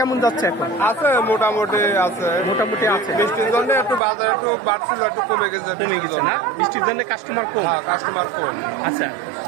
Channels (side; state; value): left; drops out; at 4.0 s